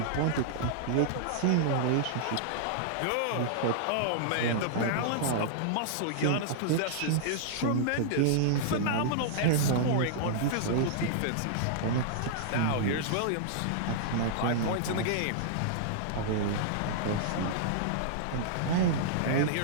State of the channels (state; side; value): different; both; correlation -0.02